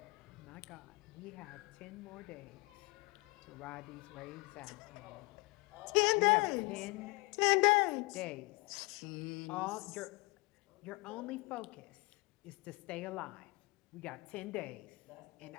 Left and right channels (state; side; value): quieter; right; 25.8 dB